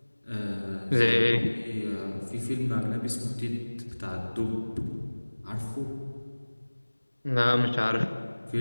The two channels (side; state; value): both; inverted; correlation -1.00